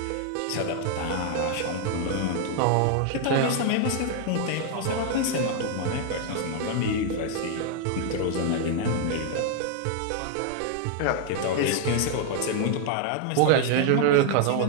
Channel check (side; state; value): both; different; correlation 0.00